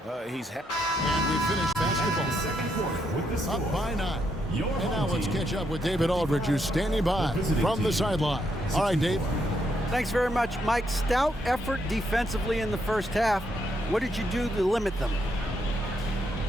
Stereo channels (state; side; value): normal; both; correlation 0.77